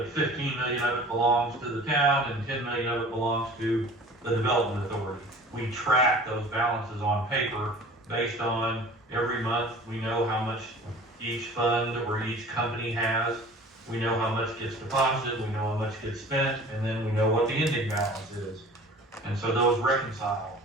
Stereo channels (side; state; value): both; normal; correlation 0.44